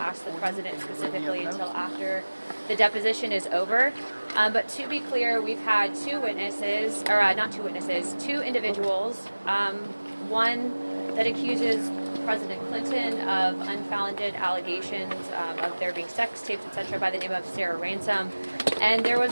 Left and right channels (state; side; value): inverted; both; correlation -1.00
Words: the president specifically until after the deposition is over. But to be clear, we've had two individuals. One that accuses President Clinton of unfounded allegations of there being sex tapes, etc., by the name of Sarah Ransom. And there